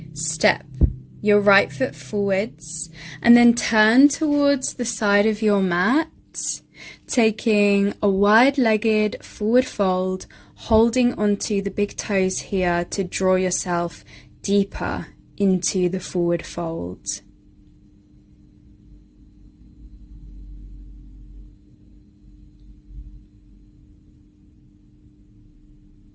Step your right foot forwards and then turn towards the side of your mat, taking a wide-legged forward fold, holding onto the big toes here to draw yourself deeper into the forward fold.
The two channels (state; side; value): identical; both; correlation 1.00